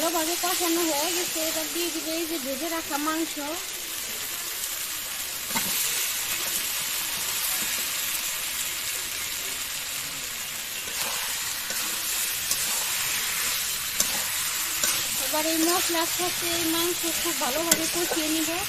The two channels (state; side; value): identical; both; correlation 1.00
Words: কষানো হয়ে গেছে। এবার দিয়ে দিব এই যে ভেজে রাখা মাংস। এবার এই মশলার সাথে এই মাংস খুব ভালোভাবে কষিয়ে নিব।